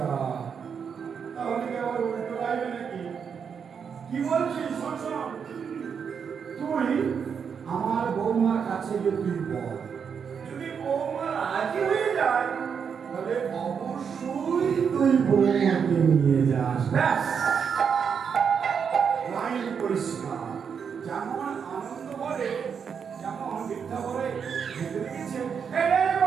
তাহলে কি আবার উল্টো গাইবে নাকি? কি বলছিস? শোন শোন, তুই আমার বৌমার কাছে গিয়ে তুই বল, যদি বৌমা রাজি হয়ে যায় তাহলে অবশ্যই তুই বৌমাকে নিয়ে যাস। ব্যাস, লাইন পরিষ্কার। যেমন আনন্দ বলে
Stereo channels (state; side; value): quieter; left; 6.8 dB